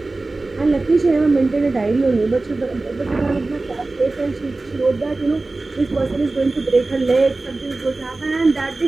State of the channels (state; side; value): quieter; left; 3.2 dB